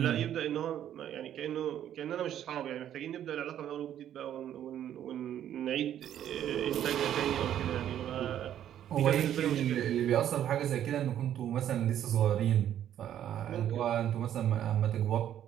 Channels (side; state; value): left; quieter; 10.7 dB